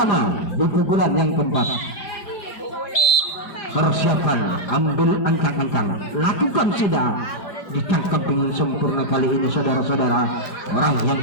di pukulan yang keempat. Persiapan, ambil ancang-ancang, lakukan sudah, ditangkap dengan sempurna kali ini saudara-saudara. Orang yang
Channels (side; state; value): right; late; 5.0 ms